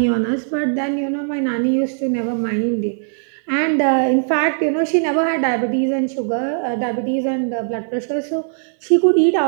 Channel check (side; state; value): left; silent; 66 dB below the other